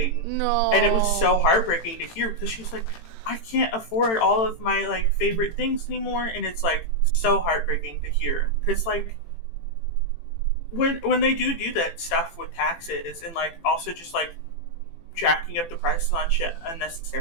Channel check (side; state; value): right; late; 18 ms